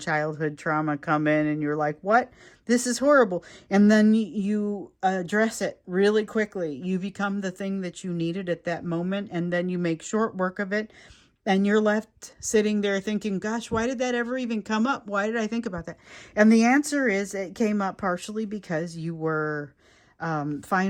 trauma come in and you're like, what? This is horrible. And then you address it really quickly. You become the thing that you needed at that moment, and then you make short work of it. And you're left sitting there thinking, gosh, why did that ever even come up? Why did I think about that? And the answer is it came up partially because you were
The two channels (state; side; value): identical; both; correlation 1.00